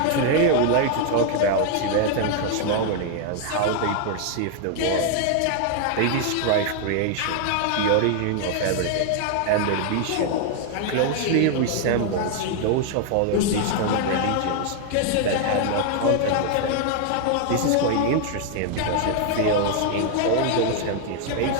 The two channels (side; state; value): both; different; correlation 0.00